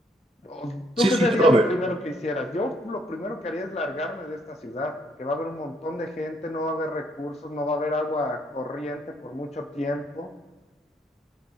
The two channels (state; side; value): normal; both; correlation 0.69